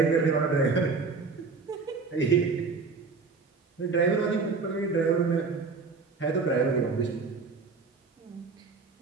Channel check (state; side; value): quieter; left; 4.5 dB